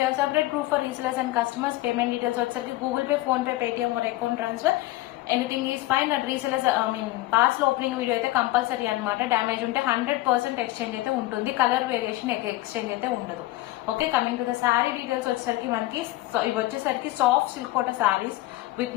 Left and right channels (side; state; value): right; quieter; 17.8 dB